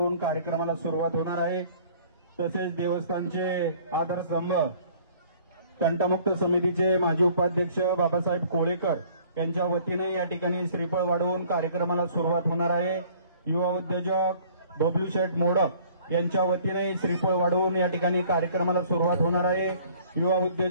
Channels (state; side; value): inverted; both; correlation -0.55